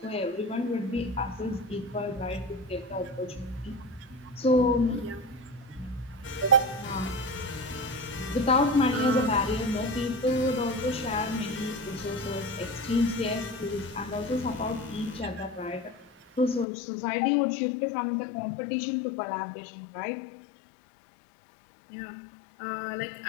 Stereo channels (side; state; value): right; drops out; at 16.7 s